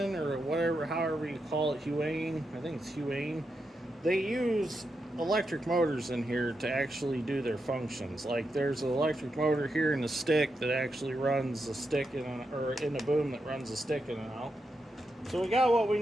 or whatever, however you call it, Huion, I think it's Huion, they use electric motors in here to actually do their functions. Like there's an electric motor here in the stick that actually runs the stick or in the boom that runs the stick in and out. So we got what we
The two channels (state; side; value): normal; both; correlation 0.85